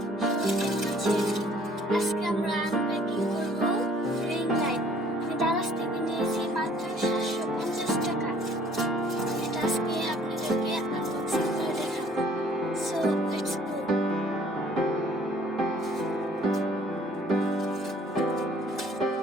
আজকে আমরা unpacking করব রিং লাইট। আমি দারাজ থেকে নিয়েছি মাত্র 750 টাকা। এটা আজকে আপনাদেরকে আনবক্সিং করে দেখাবো। So let's go.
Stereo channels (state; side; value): normal; both; correlation 0.58